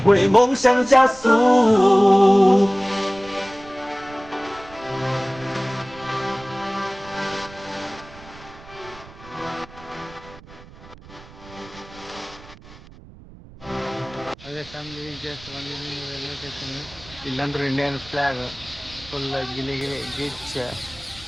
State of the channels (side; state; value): right; noise; rumble, 20 dB below the sound